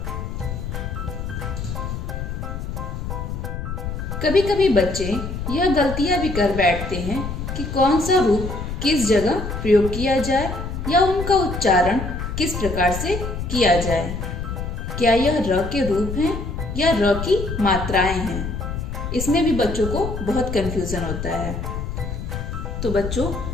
कभी कभी बच्चे यह गलतियां भी कर बैठते हैं कि कौन सा रूप किस जगह प्रयोग किया जाए या उनका उच्चारण किस प्रकार से किया जाए। क्या यह र के रूप हैं या र की मात्राएं हैं? इसमें भी बच्चों को बहुत कंफ्यूजन होता है। तो बच्चों,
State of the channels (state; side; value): noise; left; rumble, 5 dB below the sound